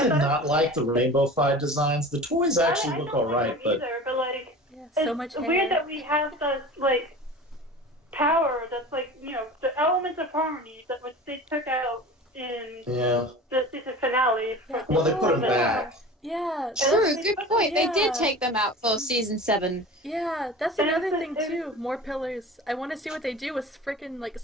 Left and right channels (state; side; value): normal; both; correlation 0.37